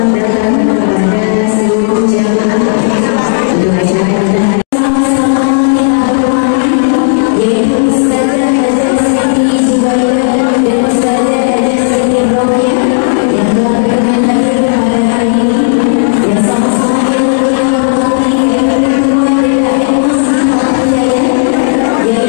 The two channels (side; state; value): right; silent; digital silence